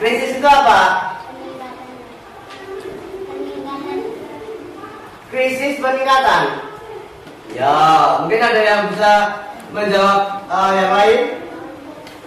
Krisis itu apa? Krisis peningkatan. Ya, mungkin ada yang bisa menjawab yang lain.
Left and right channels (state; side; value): identical; both; correlation 1.00